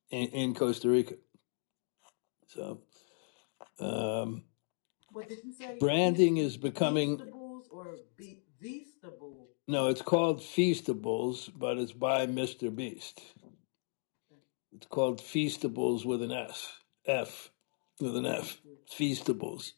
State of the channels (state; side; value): silent; right; digital silence